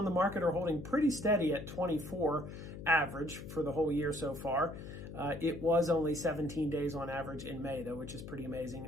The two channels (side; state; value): left; noise; hum, 11 dB below the sound